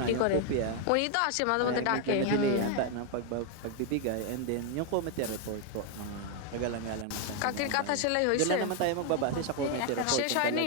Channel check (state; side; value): different; both; correlation 0.01